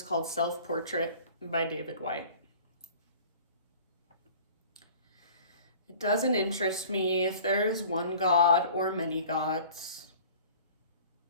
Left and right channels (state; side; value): inverted; both; correlation -0.46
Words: called Self-Portrait by David Whyte. It doesn't interest me if there is one God or many gods.